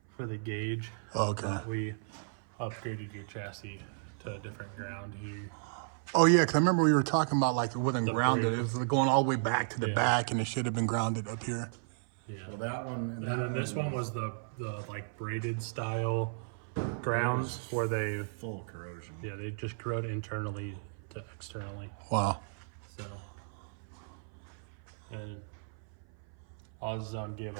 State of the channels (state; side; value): silent; left; 55 dB below the other